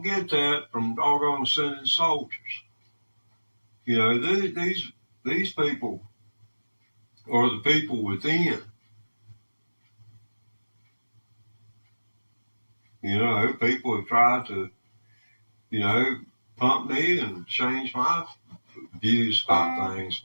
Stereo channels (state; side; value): inverted; both; correlation -1.00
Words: get that from doggone sending soldiers. You know, these people are the people within. You know, people have tried to, you know, pump me and change my views about things,